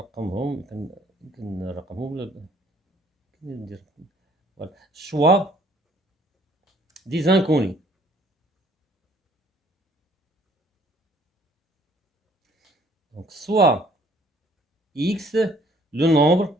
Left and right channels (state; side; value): normal; both; correlation 0.61